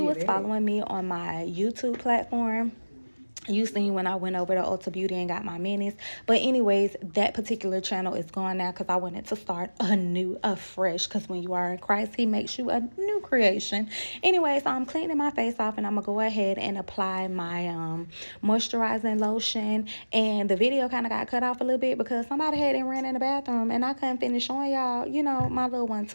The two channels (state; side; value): inverted; both; correlation -1.00